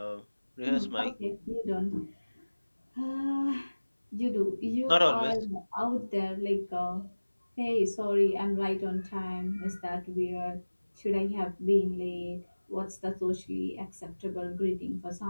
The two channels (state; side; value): inverted; both; correlation -1.00